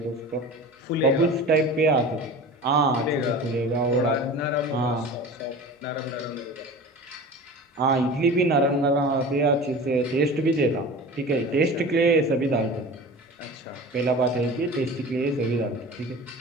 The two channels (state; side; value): normal; both; correlation 0.36